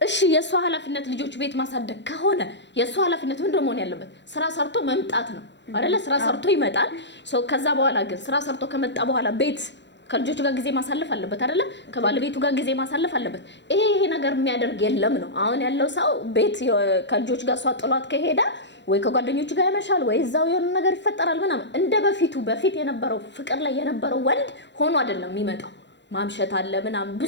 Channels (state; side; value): late; right; 0.52 ms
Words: እሺ የሷ ኃላፊነት ልጆች ቤት ማሳደግ ከሆነ የሷ ኃላፊነት ምንድን ነው መሆን ያለበት? ስራ ሰርቶ መምጣት ነው አይደለ? ስራ ሰርቶ ይመጣል። ከዛ በኋላ ግን ስራ ሰርቶ ከመጣ በኋላ ቤት ከልጆቹ ጋር ጊዜ ማሳለፍ አለበት አይደለ? ከባለቤቱ ጋር ጊዜ ማሳለፍ አለበት። ይሄ ነገር የሚያደርግ የለም ነው አሁን ያለው ሰው። ቤት ከልጆቹ ጋር እሷ ጥሏት ከሄደ ወይ ከጓደኞቹ ጋር ያመሻል ወይ እዛው የሆነ ነገር ይፈጠራል ምናምን። እንደ በፊት የነበረው ፍቅር ላይ የነበረው ወንድ ሆኖ አይደለም የሚመጣው። ማምሸት አለ ምናምን